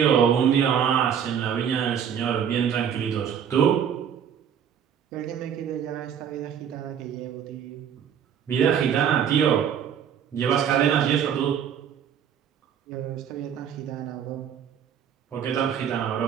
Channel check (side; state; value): left; quieter; 8.4 dB